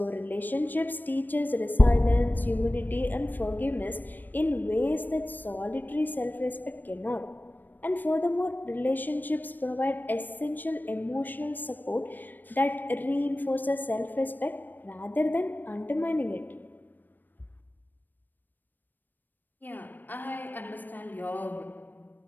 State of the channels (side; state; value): right; late; 0.090 ms